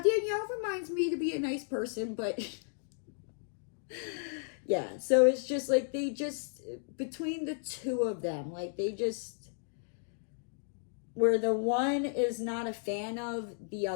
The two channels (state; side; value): silent; right; digital silence